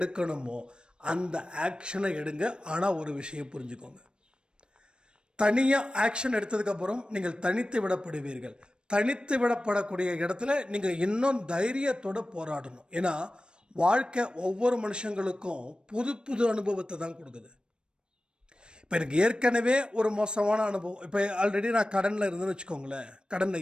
அந்த ஆக்ஷனை எடுங்க. ஆனால் ஒரு விஷயம் புரிஞ்சுக்கோங்க, தனியாக ஆக்ஷன் எடுத்ததுக்கப்புறம் நீங்கள் தனித்து விடப்படுவீர்கள். தனித்து விடப்படக்கூடிய இடத்துல நீங்கள் இன்னும் தைரியத்தோடு போராடணும். ஏன்னா வாழ்க்கை ஒவ்வொரு மனுஷங்களுக்கும் புது புது அனுபவத்தை தான் கொடுக்குது. இப்போ எனக்கு ஏற்கனவே ஒரு மோசமான அனுபவம், இப்போ ஆல்ரெடி நான் கடனில் இருந்தேன்னு வச்சுக்கோங்களேன்,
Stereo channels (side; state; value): left; late; 0.053 ms